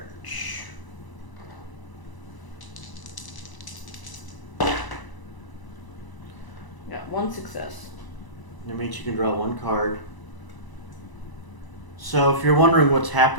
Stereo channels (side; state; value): right; late; 1.0 ms